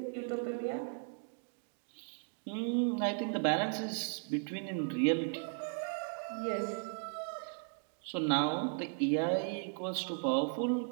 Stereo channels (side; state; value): left; silent; 53 dB below the other